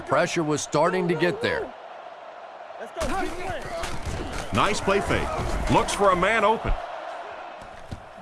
pressure was starting to get there. Nice play fake. Looks for a man open.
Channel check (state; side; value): identical; both; correlation 1.00